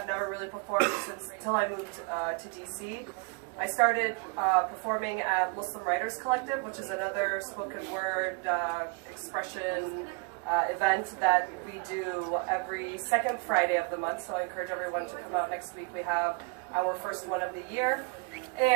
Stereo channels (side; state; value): left; quieter; 32.6 dB